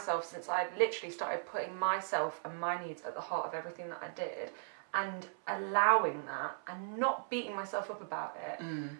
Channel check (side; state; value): left; silent; 53 dB below the other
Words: since I literally started putting myself and my needs at the heart of everything that I did and allowing that and not beating myself up about it,